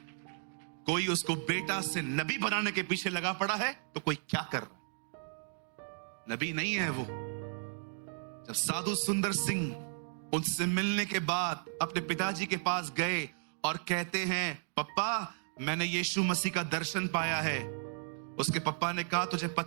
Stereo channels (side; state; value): left; silent; digital silence